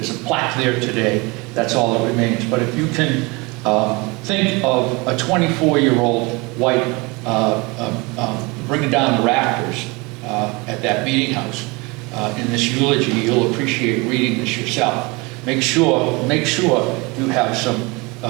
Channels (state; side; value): quieter; left; 26.3 dB